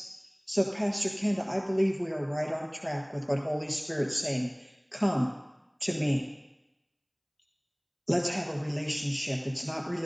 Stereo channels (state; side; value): identical; both; correlation 1.00